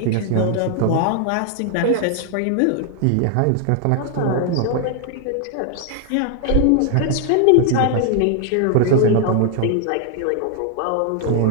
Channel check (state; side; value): different; both; correlation 0.00